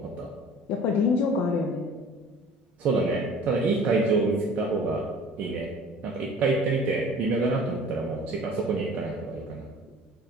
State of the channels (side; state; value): both; normal; correlation 0.46